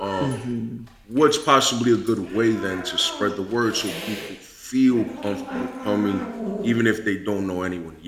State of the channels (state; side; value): identical; both; correlation 1.00